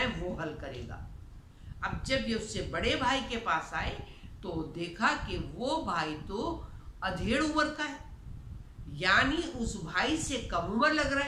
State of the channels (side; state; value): both; identical; correlation 1.00